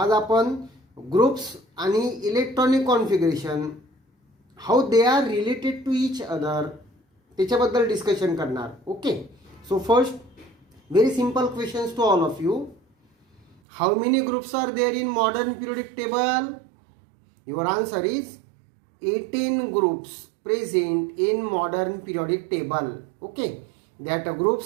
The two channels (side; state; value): left; drops out; at 13.6 s